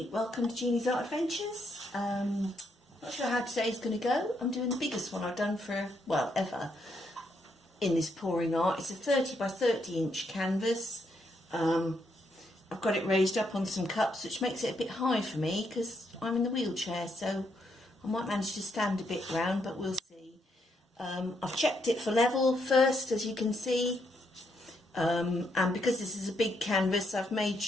welcome to Jeannie's Art Adventures. Not sure how today's going to go. I'm doing the biggest one I've done for, well, ever in this pouring art. It's a 30 by 30 inch canvas. I've got it raised up on some cups, which makes it a bit high for me because I'm in the wheelchair, so I might manage to stand a bit round, but we'll see. I've checked it for level first, as you can see, and because this is a big canvas, I've made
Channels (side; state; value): both; normal; correlation 0.77